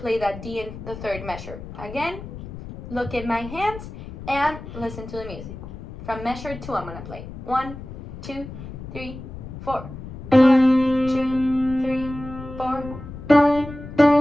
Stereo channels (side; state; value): left; noise; rumble, 12 dB below the sound